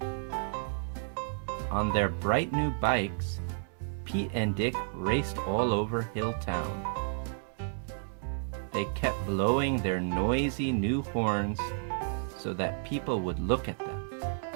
On their bright new bikes, Pete and Dick raced all over Hilltown. They kept blowing their noisy new horns so that people would look at them.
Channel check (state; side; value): silent; left; digital silence